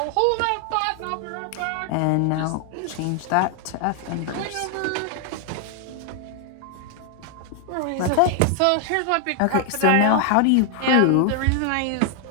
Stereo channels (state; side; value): different; both; correlation 0.00